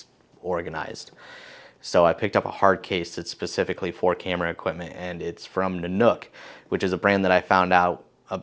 organized. So I picked up a hard case that's specifically for camera equipment, and it's from Nanuk, which is a brand that I found out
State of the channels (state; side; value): identical; both; correlation 1.00